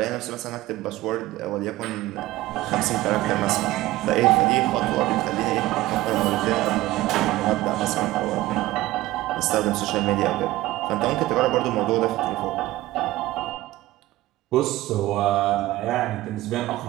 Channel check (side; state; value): left; quieter; 17.2 dB